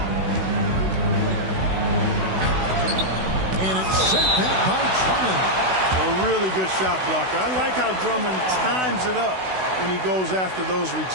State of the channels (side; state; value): left; late; 16 ms